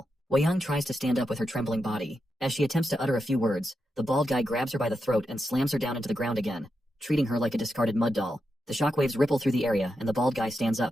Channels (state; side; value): normal; both; correlation 0.87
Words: Wei Yang tries to stand up with her trembling body. As she attempts to utter a few words, the bald guy grabs her by the throat and slams her down into the ground again, treating her like a discarded mud doll. The shockwaves ripple through the area and the bald guy stands